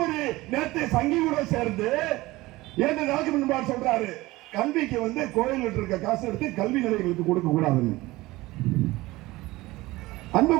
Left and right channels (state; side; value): quieter; left; 19.5 dB